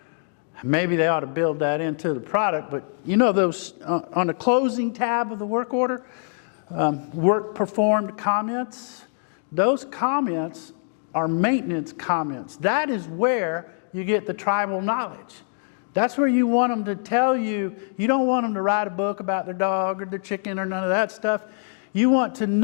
Maybe they ought to build that into the product, but you know those on the closing tab of the work order, work performed comments, those comments are maintenance comments. That is where you get the tribal knowledge. That's where you want them to tell you. You don't want them to write a book about their dog or their chicken or none of that stuff. You want to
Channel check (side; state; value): right; silent; digital silence